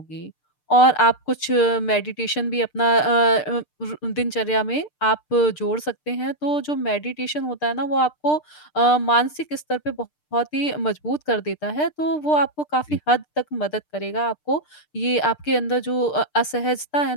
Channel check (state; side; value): late; right; 6.7 ms